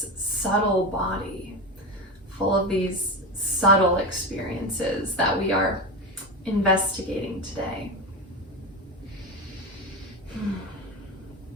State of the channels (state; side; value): normal; both; correlation 0.20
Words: subtle body full of these subtle experiences that we are investigating today.